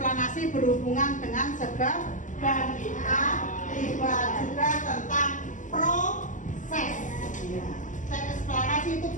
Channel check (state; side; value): late; right; 0.37 ms